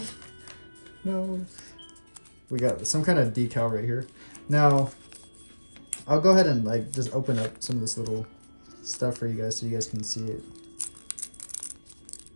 No. We got some kind of decal right here. Now, I'll go ahead and like just open up some of this little stuff for you guys so you guys can see it.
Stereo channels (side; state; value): both; inverted; correlation -1.00